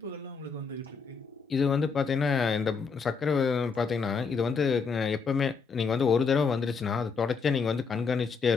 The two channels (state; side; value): quieter; right; 5.3 dB